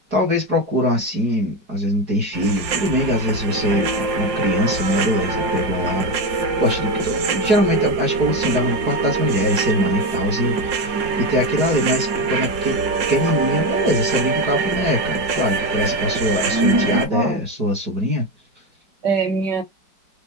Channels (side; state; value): left; late; 5.5 ms